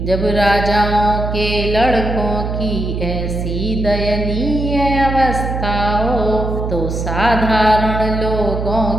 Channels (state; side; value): noise; right; hum, 3 dB below the sound